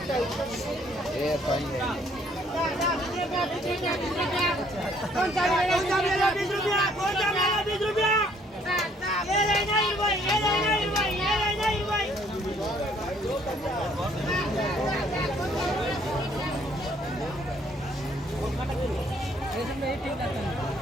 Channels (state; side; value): normal; both; correlation 0.63